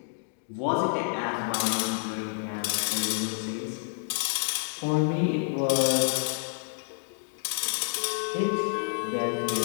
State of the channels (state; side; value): silent; right; digital silence